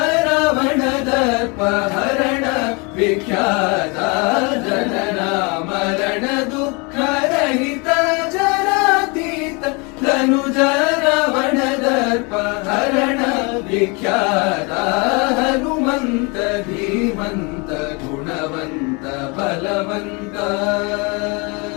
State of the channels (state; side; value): quieter; right; 30.2 dB